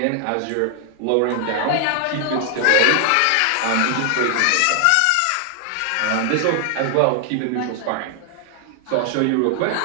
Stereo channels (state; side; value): different; both; correlation 0.00